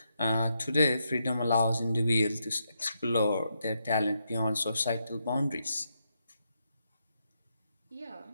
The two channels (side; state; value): both; inverted; correlation -0.81